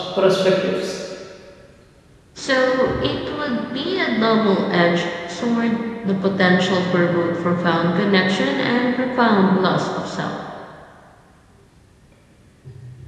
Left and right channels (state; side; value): identical; both; correlation 1.00